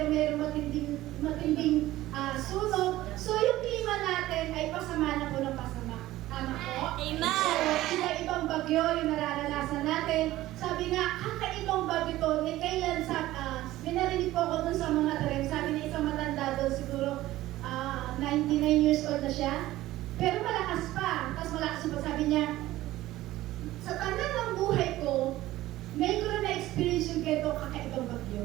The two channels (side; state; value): left; quieter; 16.0 dB